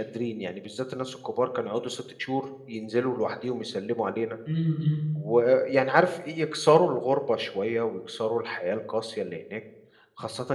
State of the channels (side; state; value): both; identical; correlation 1.00